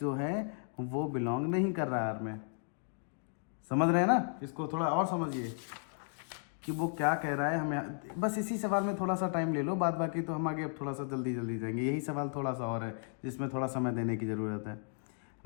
है वो बिलोंग नहीं कर रहा है यार में। समझ रहे हैं ना। इसको थोड़ा और समझिए कि वो क्या कह रहा है हमें। बस इसी सवाल में थोड़ा सा टाइम ले लो, बाद बाकी तो हम आगे अब थोड़ा सा जल्दी जाएंगे। यही सवाल थोड़ा सा और है जिसमें थोड़ा समय देने की ज़रूरत है।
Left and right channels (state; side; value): silent; right; 55 dB below the other